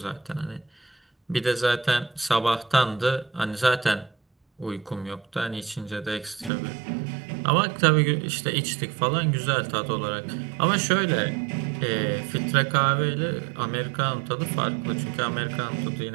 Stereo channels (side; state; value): left; drops out; at 6.5 s